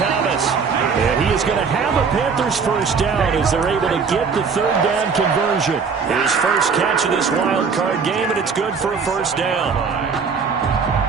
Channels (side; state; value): left; quieter; 5.6 dB